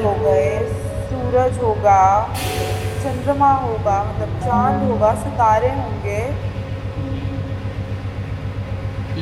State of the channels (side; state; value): both; identical; correlation 1.00